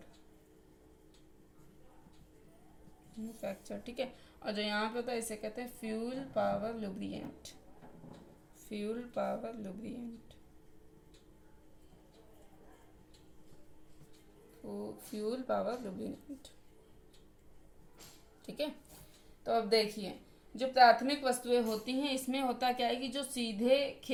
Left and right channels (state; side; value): identical; both; correlation 1.00